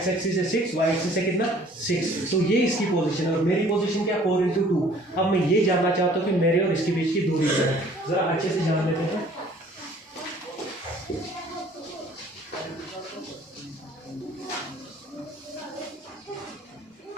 एक्सिस से 6, y एक्सिस से कितना 6, तो ये इसकी पोजीशन है और मेरी पोजीशन क्या 4×2। अब मैं ये जानना चाहता हूँ कि मेरे और इसके बीच की दूरी क्या है, ज़रा अच्छे से जान लेते हैं।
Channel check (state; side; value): normal; both; correlation 0.54